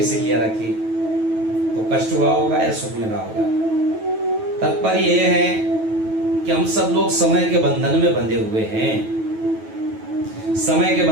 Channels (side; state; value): left; late; 9.2 ms